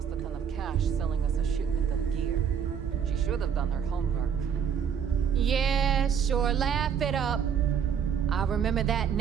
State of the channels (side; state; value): left; quieter; 7.7 dB